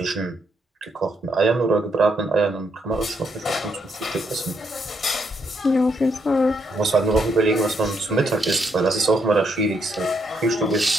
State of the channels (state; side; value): normal; both; correlation 0.76